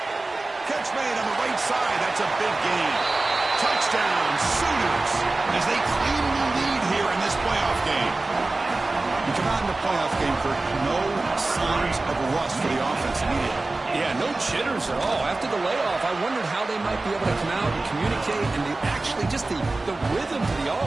Catch made on the right side. That's a big gain. Touchdown, Sooners, as they claim the lead here in this playoff game. You come out in the playoff game for no signs of rust for the offense immediately. Yeah, no jitters at all. After the layoff, I wondered how they might be able to come out and communicate and actually just the rhythm to the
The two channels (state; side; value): quieter; left; 3.2 dB